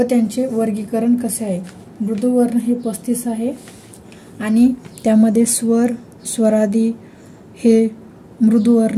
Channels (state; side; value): identical; both; correlation 1.00